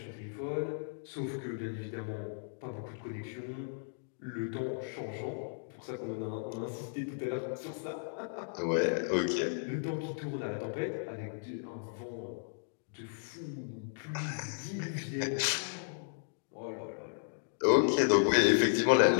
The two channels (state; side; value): silent; right; digital silence